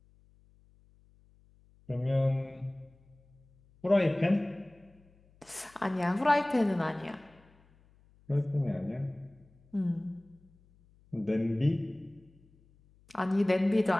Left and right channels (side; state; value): left; noise; hum, 30 dB below the sound